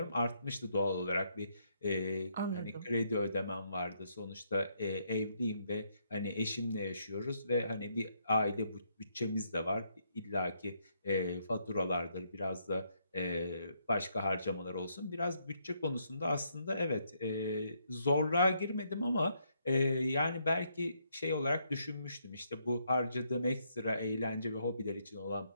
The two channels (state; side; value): inverted; both; correlation -0.75